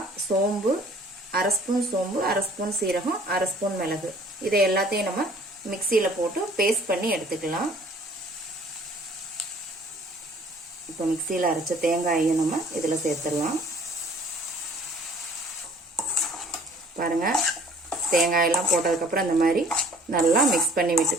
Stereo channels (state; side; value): normal; both; correlation 0.54